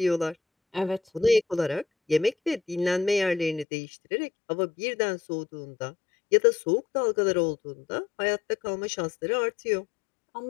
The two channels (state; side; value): drops out; right; at 3.7 s